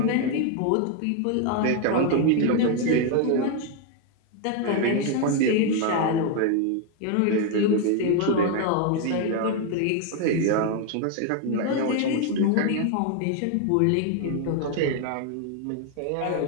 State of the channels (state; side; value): different; both; correlation 0.01